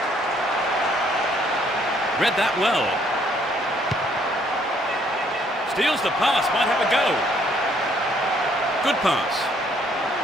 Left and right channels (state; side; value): normal; both; correlation 0.66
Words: Read that well. Steals the pass, might have a go. Good pass.